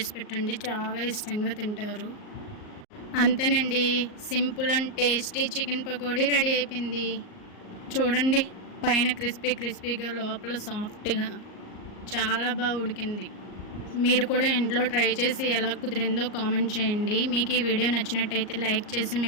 పెట్టండి, చాలా ఇష్టంగా తింటారు. అంతేనండి, simple and tasty chicken pakodi ready అయిపోయింది. చూడండి, పైన క్రిస్పీగా లోపల సాఫ్ట్గా చాలా బాగా ఉడికింది. మీరు కూడా ఇంట్లో ట్రై చేసి ఎలా కుదిరిందో కామెంట్ చేయండి. మీకు ఈ వీడియో నచ్చినట్టయితే లైక్ చేసి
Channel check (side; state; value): right; late; 38 ms